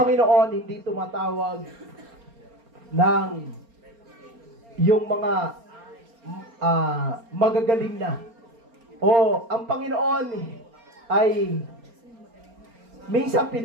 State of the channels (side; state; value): left; late; 4.3 ms